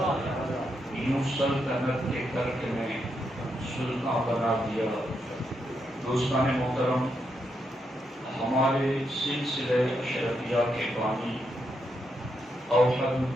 یوں سلطنت کے ترک نے سلطان بنا دیا۔ دوستان محترم، ہمارے سلسلہ اشرفیہ کے بانی اوحد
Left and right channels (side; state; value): both; normal; correlation 0.81